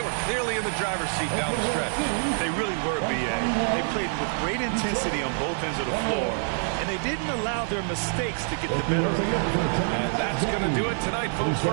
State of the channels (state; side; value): silent; left; 57 dB below the other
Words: clearly in the driver's seat down the stretch. They really were, B.A. They played with great intensity on both ends of the floor, and they didn't allow their mistakes to get the better of them. And that's going to do it tonight, folks,